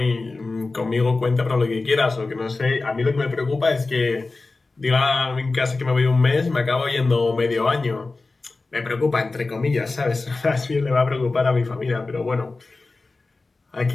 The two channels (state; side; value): quieter; right; 3.6 dB